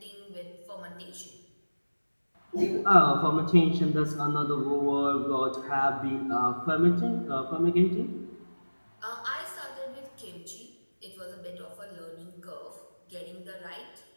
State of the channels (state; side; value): inverted; both; correlation -1.00